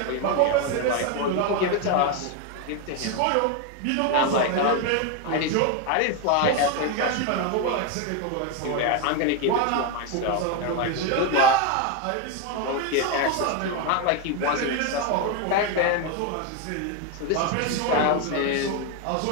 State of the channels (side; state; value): both; different; correlation 0.02